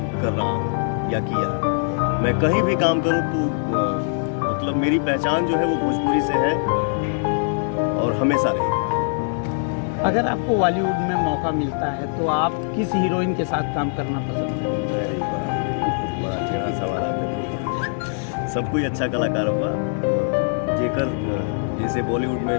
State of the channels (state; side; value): silent; right; digital silence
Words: रहा हूँ या किया। मैं कहीं भी काम करूँ तो मतलब मेरी पहचान जो है वो भोजपुरी से है और हमेशा रहेगी। अगर आपको बॉलीवुड में मौका मिलता है तो आप किस हीरोइन के साथ काम करना पसंद करेंगे? बड़ा टेढ़ा सवाल आपने पूछा। सब कोई अच्छा कलाकार हुआ, जेकर जैसे बॉलीवुड में